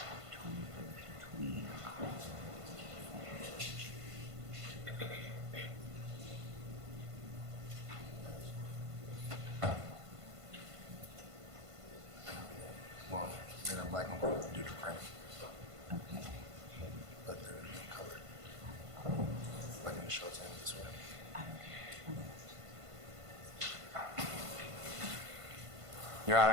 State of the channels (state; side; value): late; left; 1.5 ms